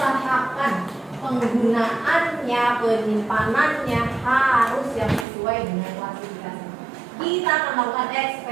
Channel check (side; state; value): left; drops out; at 5.2 s